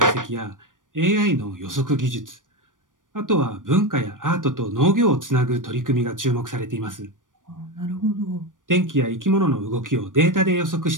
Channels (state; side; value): late; left; 0.88 ms